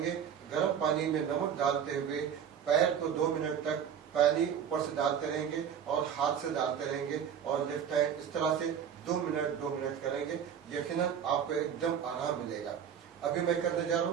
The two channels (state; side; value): quieter; left; 8.3 dB